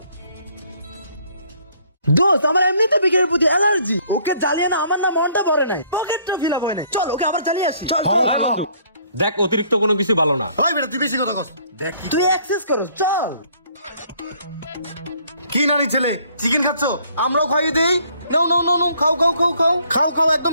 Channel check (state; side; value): inverted; both; correlation -0.62